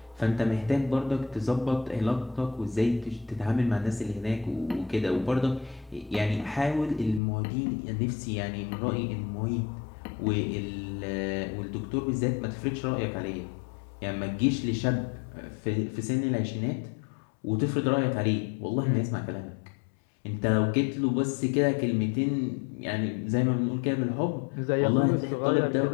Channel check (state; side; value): drops out; right; at 7.2 s